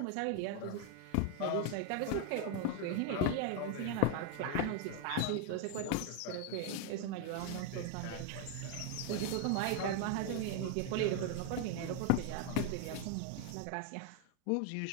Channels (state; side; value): different; both; correlation 0.01